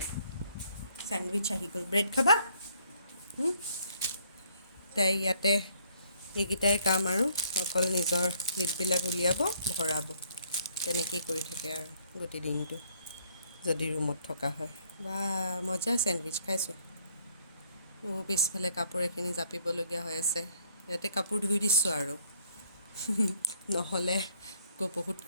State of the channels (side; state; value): both; inverted; correlation -0.65